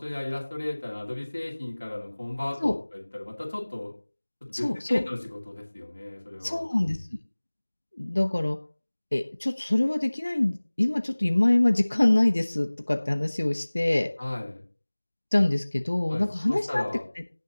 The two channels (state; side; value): inverted; both; correlation -1.00